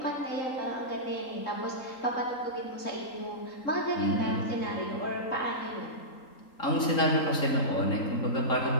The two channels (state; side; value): late; right; 3.8 ms